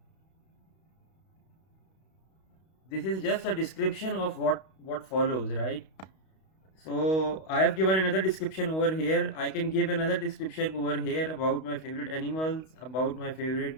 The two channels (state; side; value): late; right; 32 ms